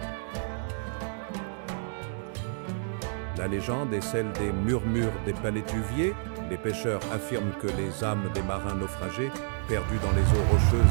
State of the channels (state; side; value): silent; left; 58 dB below the other